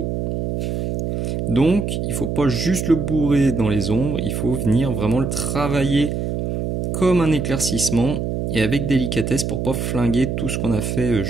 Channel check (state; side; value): noise; right; hum, 2 dB below the sound